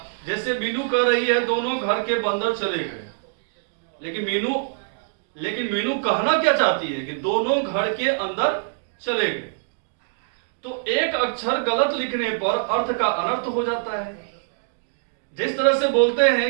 जैसे मीनू कह रही है दोनों घर के बंदर चले गए, लेकिन मीनू कहना क्या चाहती है कि दोनों घर के अंदर चले गए। तो एक अक्षर गलत लिखने पर अर्थ का अनर्थ हो जाता है। जिस तरह से बोलते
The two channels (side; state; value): left; silent; digital silence